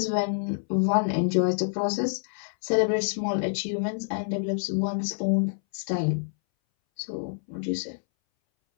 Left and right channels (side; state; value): right; silent; 60 dB below the other